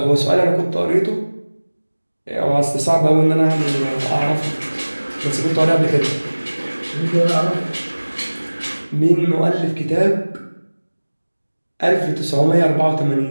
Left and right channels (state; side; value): inverted; both; correlation -1.00